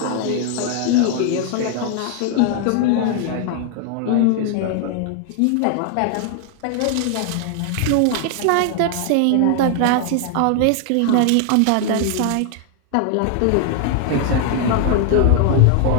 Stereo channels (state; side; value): different; both; correlation 0.00